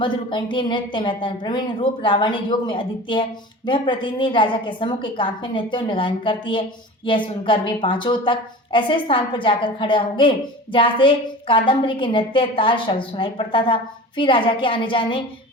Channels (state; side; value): normal; both; correlation 0.36